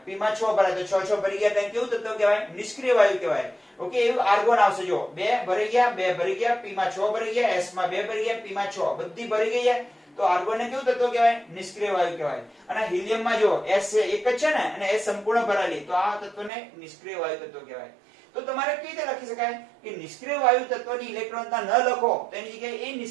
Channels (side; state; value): left; drops out; at 16.5 s